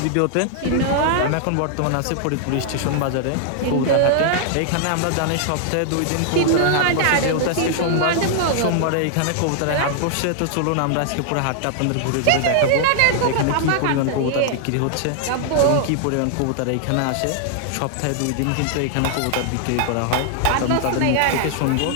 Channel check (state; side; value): different; both; correlation -0.01